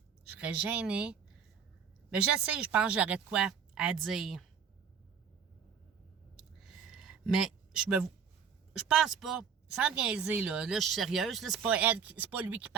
je serais gênée. Mais je sais, je pense que j'aurais de quoi à dire. Mais je pense pas, sans niaiser, là je suis sérieuse, là, c'est pas lui qui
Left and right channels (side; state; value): left; quieter; 6.9 dB